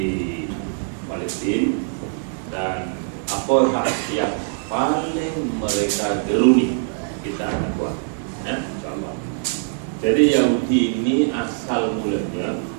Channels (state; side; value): silent; left; digital silence